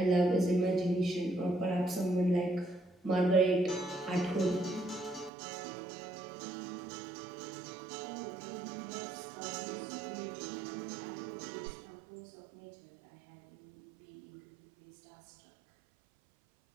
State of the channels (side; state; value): left; drops out; at 5.3 s